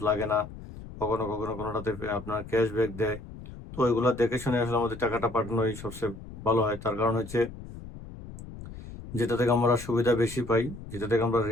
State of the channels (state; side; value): noise; left; rumble, 14 dB below the sound